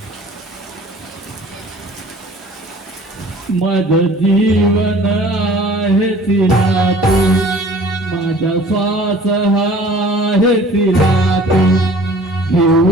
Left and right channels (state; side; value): normal; both; correlation 0.49